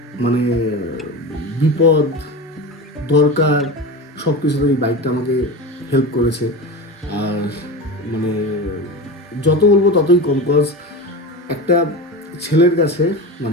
মানে বিপদ দরকার, সব কিছুতে এই বাইকটা আমাকে হেল্প করেছে। আর মানে যত বলবো ততই কম, কজ একটা ছেলের কাছে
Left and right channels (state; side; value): normal; both; correlation 0.26